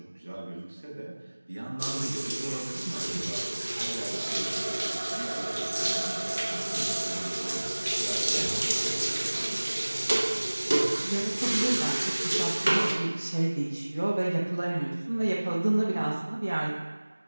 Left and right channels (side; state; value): both; inverted; correlation -1.00